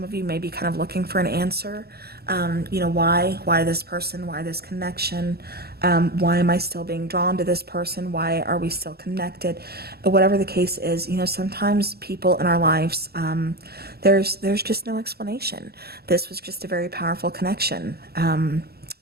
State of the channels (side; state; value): left; late; 0.46 ms